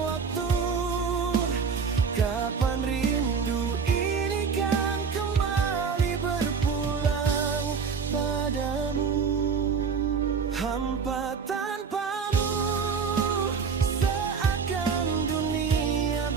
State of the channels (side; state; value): left; quieter; 5.8 dB